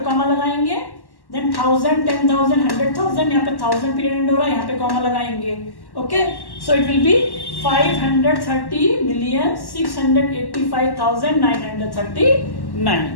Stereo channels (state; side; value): late; right; 1.1 ms